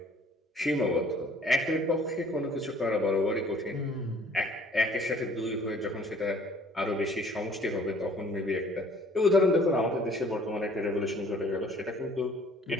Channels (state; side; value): normal; both; correlation 0.55